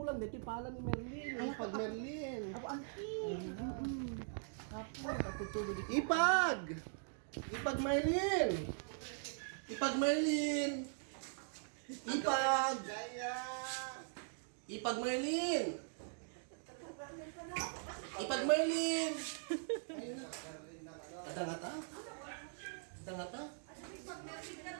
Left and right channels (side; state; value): left; silent; digital silence